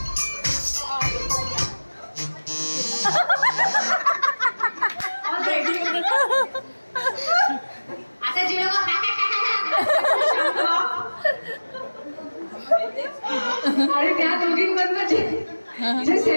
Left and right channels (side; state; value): both; inverted; correlation -1.00